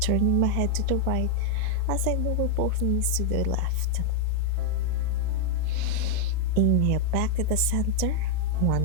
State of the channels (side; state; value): both; different; correlation 0.00